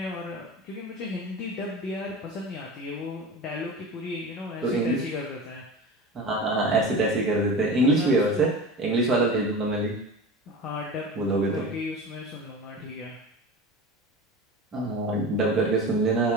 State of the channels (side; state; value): both; normal; correlation 0.31